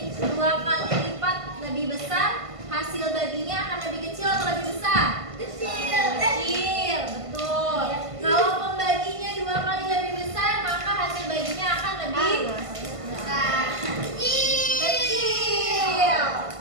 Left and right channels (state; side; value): late; left; 1.5 ms